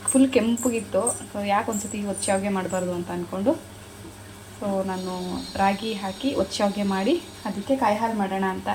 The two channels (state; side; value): identical; both; correlation 1.00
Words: ಫುಲ್ ಕೆಂಪಗಿತ್ತು. ಸೊ ಯಾಕೆ ಒಂದು ಸತಿ ಒಚ್ಚ ಮಾಡಬಾರ್ದು ಅಂತ ಅಂದ್ಕೊಂಡು ಸೊ ನಾನು ರಾಗಿ ಹಾಕಿ ಒಚ್ಚ ಮಾಡಿ ಅದಕ್ಕೆ ಕಾಯಿ ಹಾಲು ಮಾಡೋಣ ಅಂತ